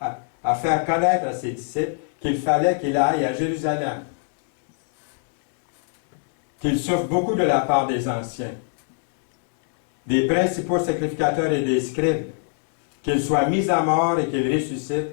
faire connaître à ses disciples qu'il fallait qu'il aille à Jérusalem qu'il souffre beaucoup de la part des anciens, des principaux sacrificateurs et des scribes, qu'il soit mis à mort et qu'il ressuscite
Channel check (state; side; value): silent; right; 63 dB below the other